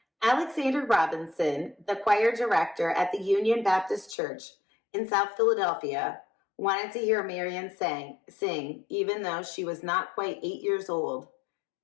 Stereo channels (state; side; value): drops out; right; at 4.2 s